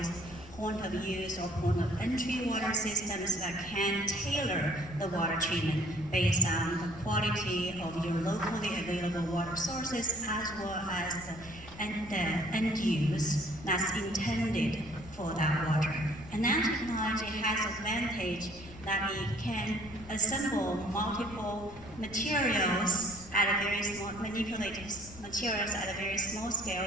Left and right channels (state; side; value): noise; left; rumble, 17 dB below the sound